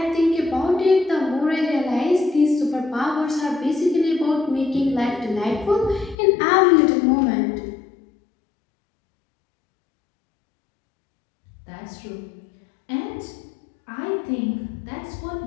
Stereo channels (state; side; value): drops out; right; at 6.2 s